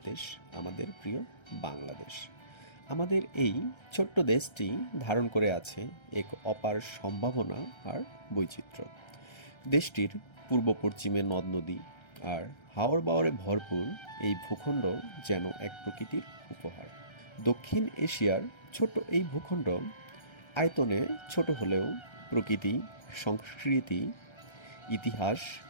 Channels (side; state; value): right; late; 1.3 ms